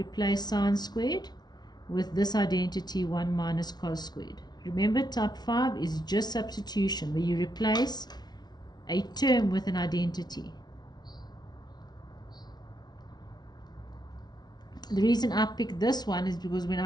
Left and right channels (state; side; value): late; right; 0.19 ms